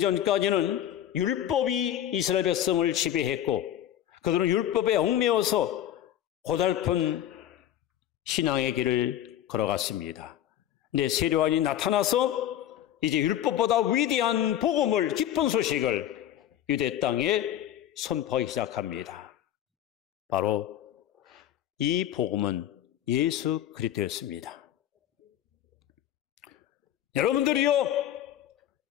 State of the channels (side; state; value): right; quieter; 11.4 dB